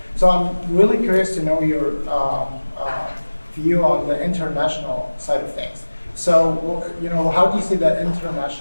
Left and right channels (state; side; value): inverted; both; correlation -1.00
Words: So I'm really curious to know your view on the international side of things. So, how do you see the